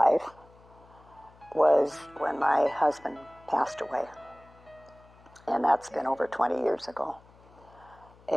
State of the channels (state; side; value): noise; left; hum, 26 dB below the sound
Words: was when my husband passed away. And that's been over 20 years ago.